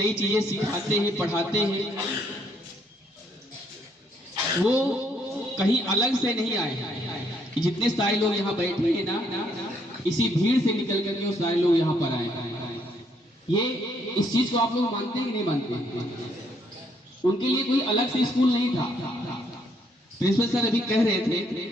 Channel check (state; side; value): normal; both; correlation 0.70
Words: चीजें सिखाते हैं, पढ़ाते हैं, वो कहीं अलग से नहीं आए कि जितने सारे लोग यहाँ बैठे हैं ना, इसी भीड़ से निकल करके वो सारे लोग यहाँ पर आए। ये इस चीज को आप लोग मानते हैं कि नहीं मानते? उनके लिए कोई अलग से स्कूल नहीं था। प्रिंसिपल सर अभी कह रहे थे,